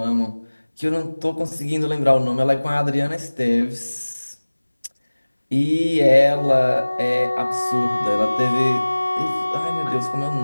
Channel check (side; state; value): both; inverted; correlation -1.00